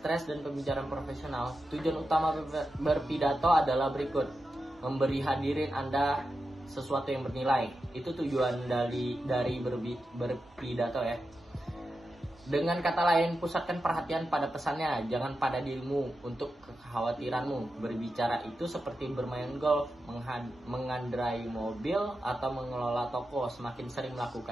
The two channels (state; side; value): normal; both; correlation 0.90